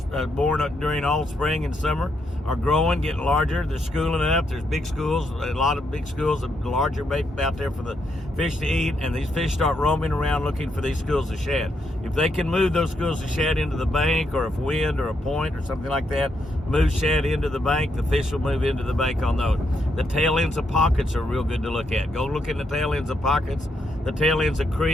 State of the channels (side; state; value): both; normal; correlation 0.78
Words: born during all spring and summer are growing, getting larger. They're schooling up. There's big schools, a lot of big schools of larger bait out there for the fish to eat, and these fish start roaming around looking for these schools of shad. If they can move those schools of shad into the bank, or if wind or a point or something like that moves shad into the bank, the fish will move into the bank on those. The tail ends of pockets are real good to look at. Go look in the tail ends of pockets, the tail ends of